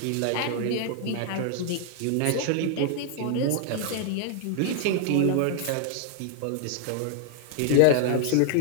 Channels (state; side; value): different; both; correlation -0.01